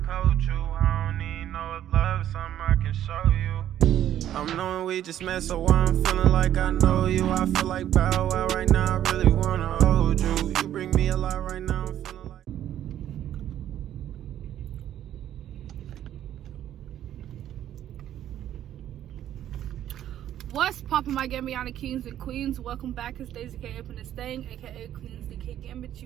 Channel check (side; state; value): left; quieter; 11.4 dB